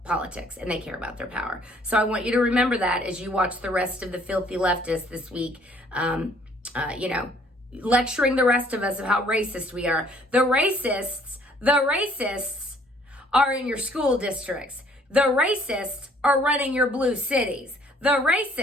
politics and they care about their power. So I want you to remember that as you watch the rest of the filthy leftists this week, lecturing the rest of us of how racist we are. The racists are in your school districts. The racists are running your blue cities. The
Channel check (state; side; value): normal; both; correlation 0.60